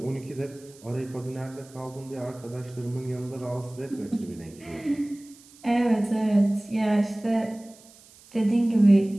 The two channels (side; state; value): right; noise; hiss, 24 dB below the sound